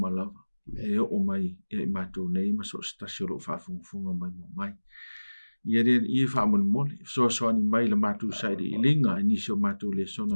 e o mai e matu nei maso stasio lo fa funga mai ia fa mon so ani mai le matu sai de ilinga ni so matu le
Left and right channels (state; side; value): inverted; both; correlation -1.00